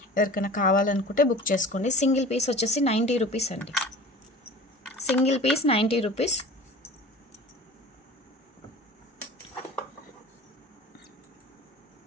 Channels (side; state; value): both; normal; correlation 0.40